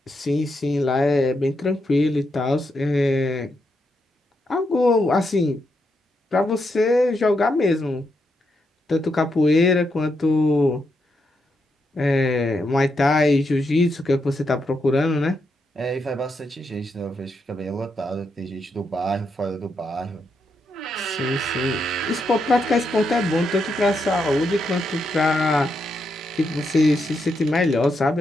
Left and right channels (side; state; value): both; normal; correlation 0.81